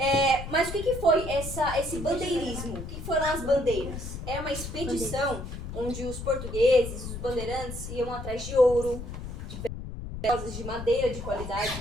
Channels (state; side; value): noise; left; rumble, 8 dB below the sound